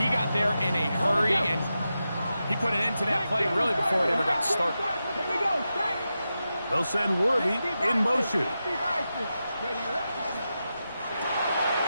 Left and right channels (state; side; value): inverted; both; correlation -0.90